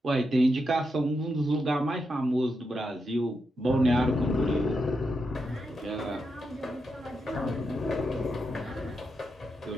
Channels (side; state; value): both; normal; correlation 0.85